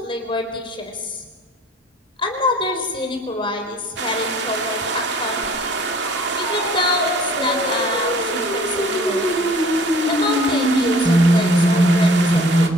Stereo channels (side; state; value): both; normal; correlation 0.51